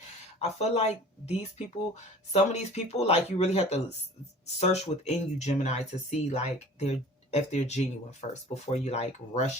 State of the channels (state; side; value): normal; both; correlation 0.45